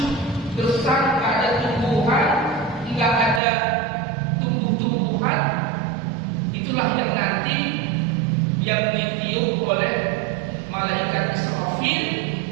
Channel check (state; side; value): drops out; left; at 3.4 s